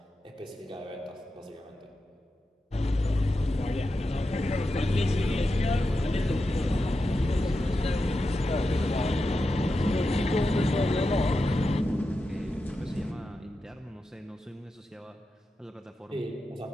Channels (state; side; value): normal; both; correlation 0.90